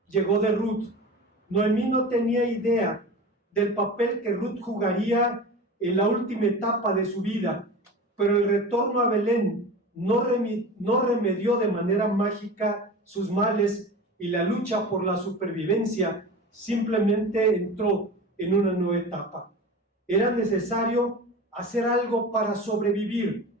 Llegó de Ruth. Noemí no tenía idea del papel que Ruth jugaría en la última etapa de su vida, pero el retorno a Belén no remedió de manera mágica sus males, y la lucha por la supervivencia simplemente entró en una nueva etapa. Era necesario hacer algo para sobrevivir,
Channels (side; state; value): both; normal; correlation 0.32